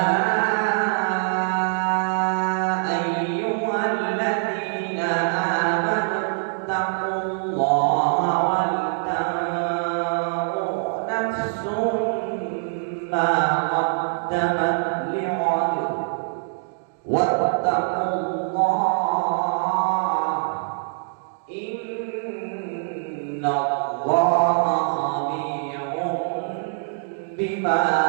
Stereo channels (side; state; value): left; silent; digital silence